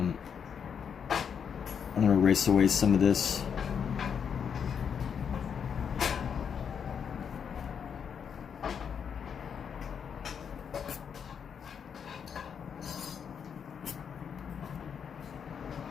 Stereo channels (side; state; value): right; quieter; 7.3 dB